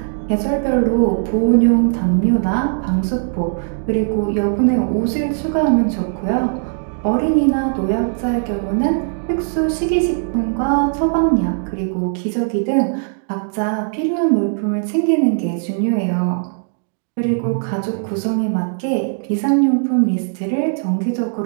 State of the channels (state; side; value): silent; left; digital silence